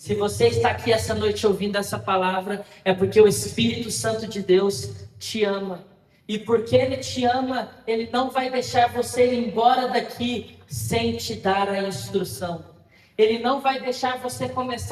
você está aqui essa noite ouvindo essa palavra, é porque o Espírito Santo de Deus te ama. E porque Ele te ama, Ele não vai deixar você ir embora daqui sem te dar a instrução. Ele não vai deixar você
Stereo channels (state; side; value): identical; both; correlation 1.00